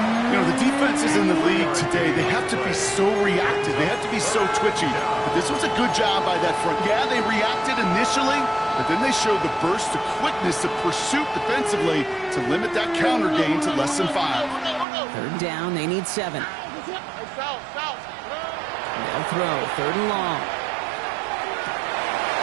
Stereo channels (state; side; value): drops out; left; at 14.9 s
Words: You know, the defenses in the league today, they have to be so reactive. They have to be so twitchy. But this was a good job by that front. Yeah, they reacted initially, but then they showed the burst of quickness of pursuit defensively to limit that counter gain to less than 5. 3rd down, they need 7. They'll throw, 3rd and long.